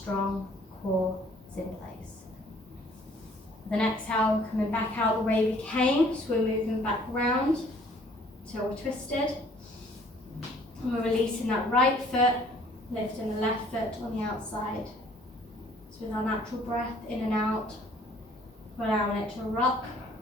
core is in place. With an exhale, coming back out the way we came, so we're moving back round till we're twisted. And we're releasing that right foot, lifting the left foot on the outside. So with our natural breath in and out, we're allowing it to rock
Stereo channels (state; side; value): normal; both; correlation 0.58